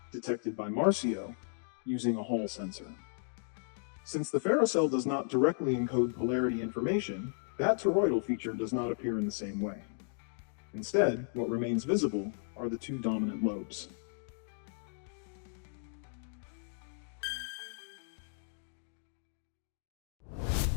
detected by Marsio using a Hall sensor. Since the FerroCell does not directly encode polarity information, that toroidal feature does not appear in the same way. Instead, what remains visible are the two dominant lobes.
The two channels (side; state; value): right; silent; digital silence